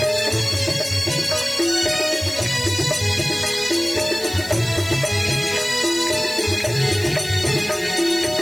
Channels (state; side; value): noise; left; hiss, 14 dB below the sound